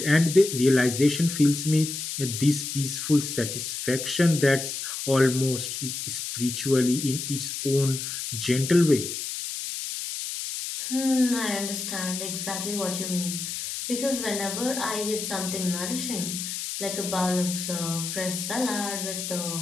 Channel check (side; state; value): left; noise; hiss, 5 dB below the sound